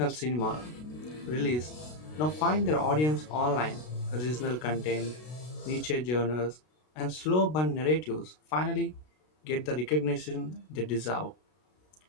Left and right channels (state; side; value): late; right; 33 ms